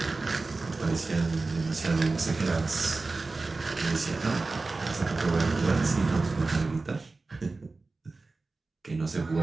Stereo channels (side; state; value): left; quieter; 3.6 dB